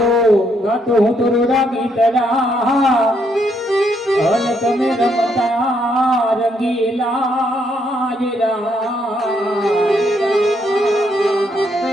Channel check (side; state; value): both; normal; correlation 0.74